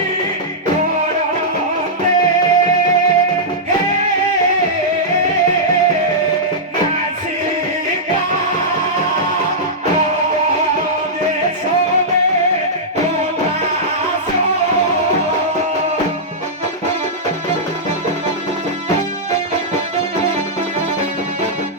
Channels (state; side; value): normal; both; correlation -0.11